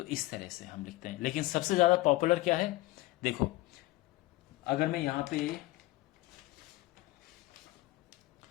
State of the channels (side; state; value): right; quieter; 18.8 dB